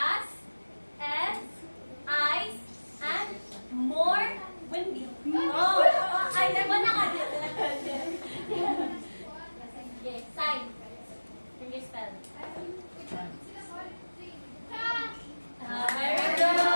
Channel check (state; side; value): inverted; both; correlation -1.00